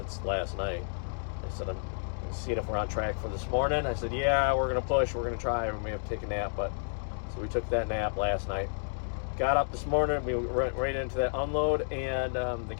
last night. I said, I'm seeing if we're on track for this morning. I said, yeah, we're going to push. We're going to try. We may have to take a nap. But so we took that nap last night. Got up this morning. We went right into that unload. And the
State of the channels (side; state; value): right; silent; digital silence